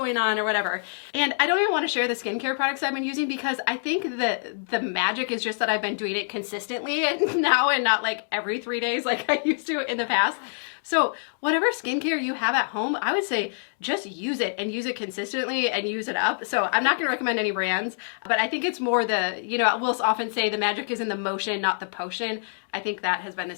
on or whatever. And I don't even want to share the skincare products I've been using because I think that the magic is just that I've been doing it consistently and now, and not like every 3 days like I used to in the past. So whatever skincare you have at home, I would say just use it and use it consistently and use it up. So I'm not going to recommend any brands, but I think it's more the, you know, we'll often say the magic is in the motion, not the potion. I think that has been the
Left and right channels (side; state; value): right; silent; digital silence